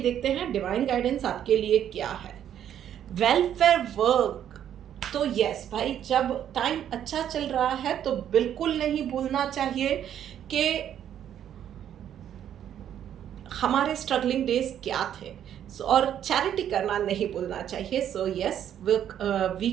देखते हैं डिवाइन गाइडेंस आपके लिए क्या है। वेलफेयर वर्क, तो यस भाई, जब टाइम अच्छा चल रहा है तो बिल्कुल नहीं भूलना चाहिए कि हमारे स्ट्रगलिंग डेज क्या थे, और चैरिटी करना नहीं भूलना चाहिए। सो यस,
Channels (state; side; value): quieter; left; 10.1 dB